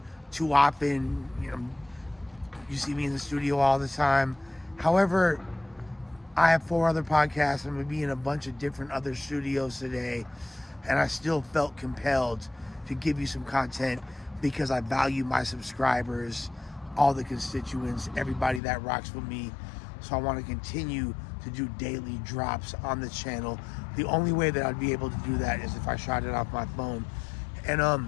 too often. You see me in the studio all the time. However, I have 4 other podcasts. I'm going to be in a bunch of different other studios today, and I still felt compelled to give you some content because I value my subscribers, all the constituents, everybody that rocks with me. So I want to continue to do daily drops on the channel. The only way that I'd be able to do that is if I shot it off my phone.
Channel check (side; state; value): right; drops out; at 18.6 s